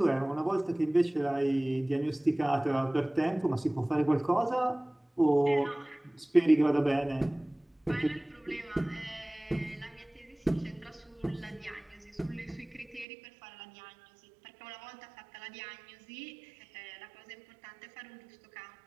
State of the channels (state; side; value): drops out; left; at 13.1 s